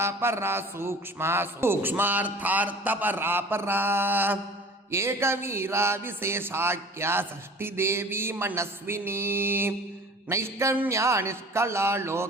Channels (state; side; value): normal; both; correlation 0.44